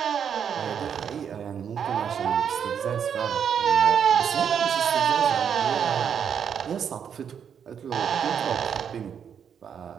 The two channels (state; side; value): quieter; left; 7.8 dB